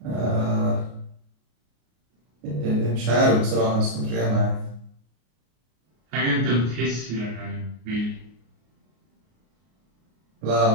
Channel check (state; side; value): late; left; 33 ms